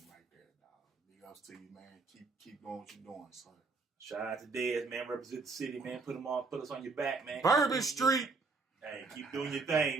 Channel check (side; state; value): left; quieter; 4.0 dB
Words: right there, dog. Big ups to you, man. Keep doing what you're doing, son. Shout out to Dez, man. Represent the city, man. Put us on your back, man. Bourbon Street. Hey, keep doing your